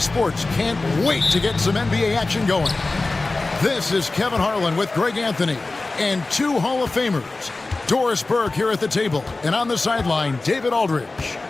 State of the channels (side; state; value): right; quieter; 3.3 dB